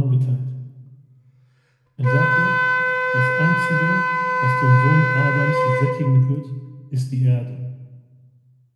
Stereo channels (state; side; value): identical; both; correlation 1.00